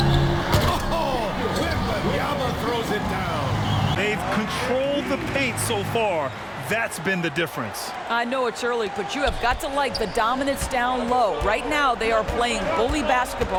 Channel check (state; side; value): identical; both; correlation 1.00